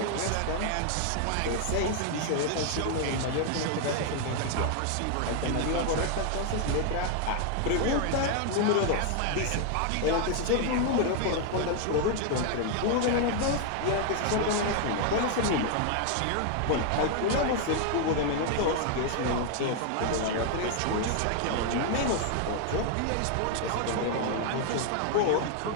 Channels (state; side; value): different; both; correlation 0.00